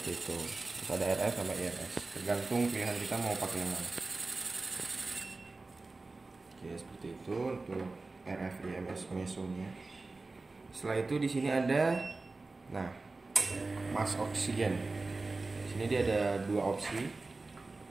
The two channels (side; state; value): left; quieter; 3.5 dB